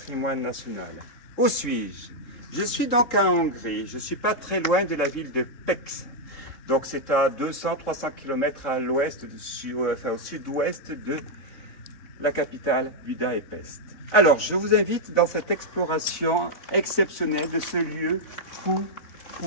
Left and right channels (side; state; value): right; late; 3.6 ms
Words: national. Où suis-je? Je suis donc en Hongrie. Je ne suis pas très loin de la ville de Pécs. Donc c'est à 200-300 km à l'ouest, au sud-ouest de la capitale Budapest. Alors, je vous invite dans cette exploration exceptionnelle de ce lieu fou.